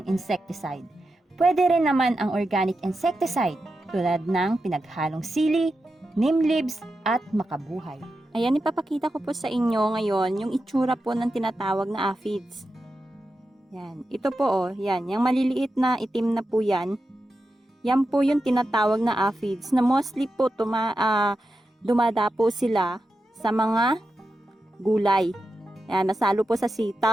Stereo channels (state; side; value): normal; both; correlation 0.90